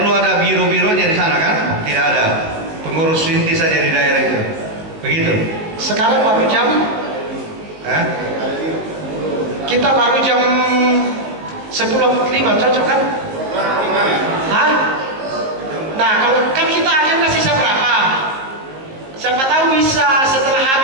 ada biro-bironya di sana kan? Tidak ada. Pengurus inti saja di daerah itu. Begitu. Sekarang baru jam kita baru jam 10.05, cocok kan? Hah? Nah, kalau kan kita agenda sisa berapa? Siapa tahu bisa setelah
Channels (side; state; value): left; late; 19 ms